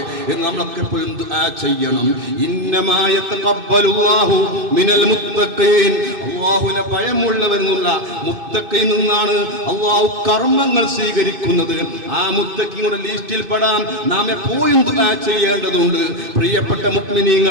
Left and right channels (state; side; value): late; left; 2.6 ms